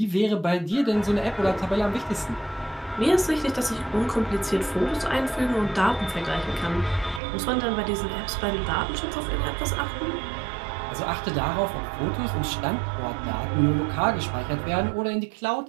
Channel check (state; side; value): drops out; left; at 7.2 s